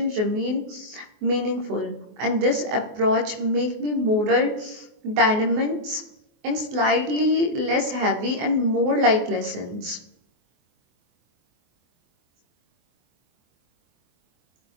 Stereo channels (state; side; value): late; left; 24 ms